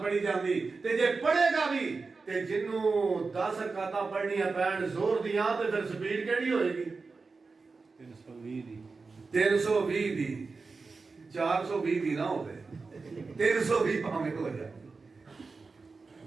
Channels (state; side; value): quieter; left; 4.2 dB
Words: پڑھی جاندی تے جے پڑھے گا بھی تے جنوں 10 رکعتاں پڑھنیاں پین زور دیاں تے پھر سپیڈ کیڑی ہوئے گی 320 دی 420 دی نہ ہوے 320 پاویں ہو جائے